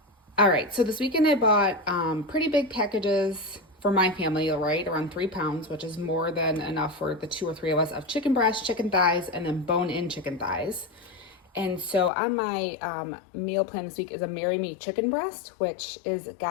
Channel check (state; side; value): drops out; right; at 12.1 s